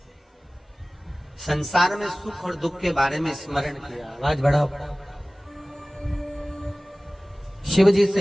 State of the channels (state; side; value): normal; both; correlation 0.98